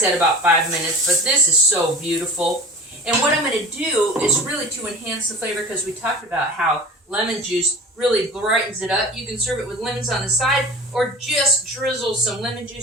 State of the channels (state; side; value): normal; both; correlation 0.38